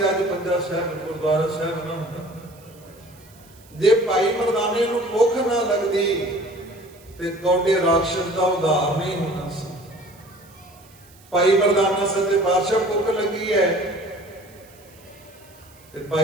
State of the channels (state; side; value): noise; right; hiss, 26 dB below the sound